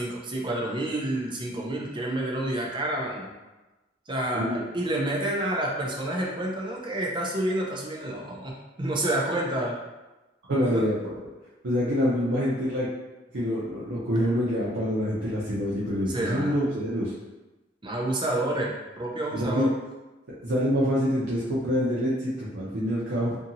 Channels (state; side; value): normal; both; correlation 0.59